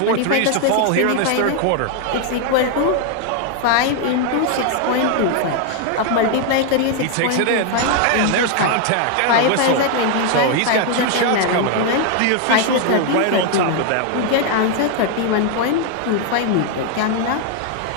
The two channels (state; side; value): different; both; correlation 0.00